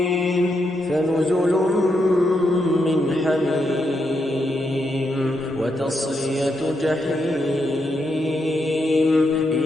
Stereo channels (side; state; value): both; normal; correlation 0.82